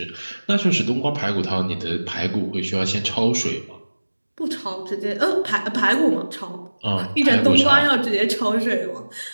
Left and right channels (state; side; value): inverted; both; correlation -1.00